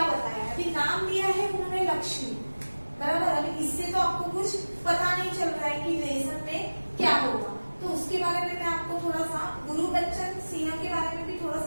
बताया है, अभी नाम दिया है उन्होंने लक्ष्मी, बराबर। अभी इससे तो आपको कुछ पता नहीं चल रहा है कि लेसन में क्या होगा, तो उसके बारे में मैं आपको थोड़ा सा गुरुबच्चन सिंह के बारे में भी थोड़ा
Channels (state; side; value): inverted; both; correlation -1.00